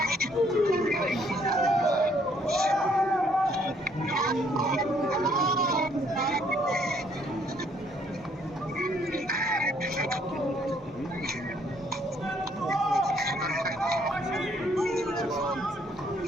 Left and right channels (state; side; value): normal; both; correlation 0.66